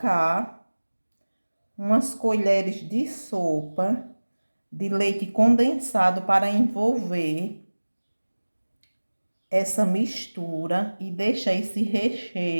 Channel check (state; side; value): inverted; both; correlation -1.00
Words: umas colheres de sopa de leite condensado para envolver essa mistura e deixar esse